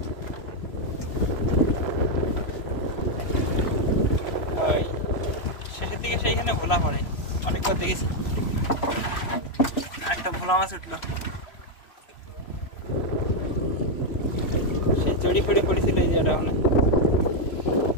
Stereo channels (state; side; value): late; right; 3.0 ms